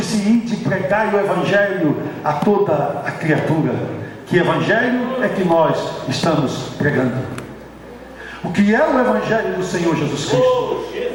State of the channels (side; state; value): both; identical; correlation 1.00